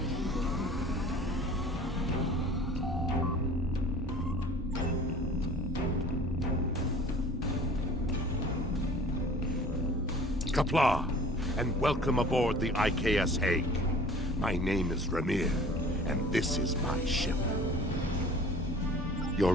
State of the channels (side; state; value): both; normal; correlation 0.47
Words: Qapla', and welcome aboard the IKS Hague. My name is Ramir, and this is my ship. Your